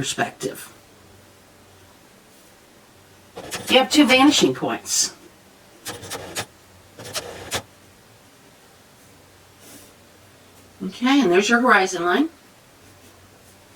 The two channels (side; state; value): both; identical; correlation 1.00